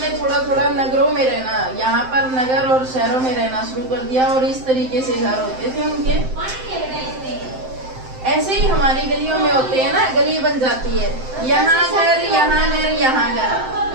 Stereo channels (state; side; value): late; left; 7.7 ms